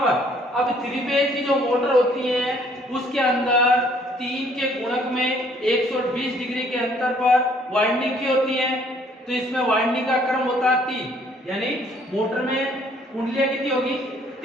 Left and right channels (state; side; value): normal; both; correlation 0.62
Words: अब थ्री फेज की जो मोटर होती है उसके अंदर 3 के गुणक में 120 डिग्री के अंतर पर वाइंडिंग की होती है। तो इसमें वाइंडिंग का क्रम होता है 3, यानी मोटर में कुंडलियां कितनी होगी